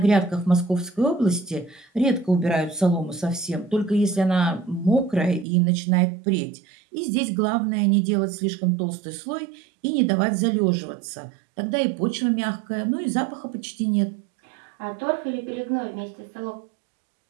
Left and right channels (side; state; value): left; drops out; at 5.5 s